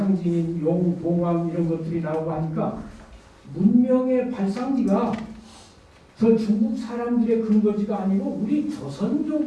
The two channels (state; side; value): identical; both; correlation 1.00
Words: 용, 봉황 이런 것들이 나오고 하니까 문명의 발상지가 저 중국 사람들의 근거지가 아니고 우리